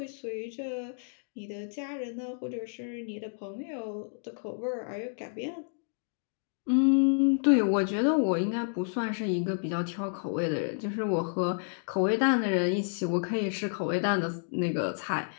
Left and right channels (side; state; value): right; silent; digital silence